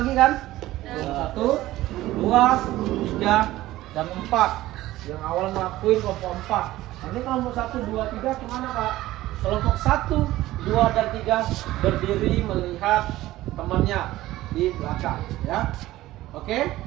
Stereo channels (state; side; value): quieter; left; 16.2 dB